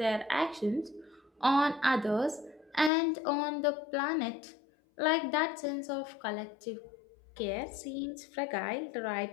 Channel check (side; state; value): right; drops out; at 2.9 s